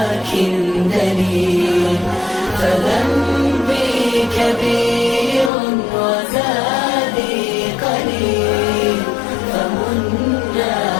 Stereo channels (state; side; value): drops out; right; at 5.5 s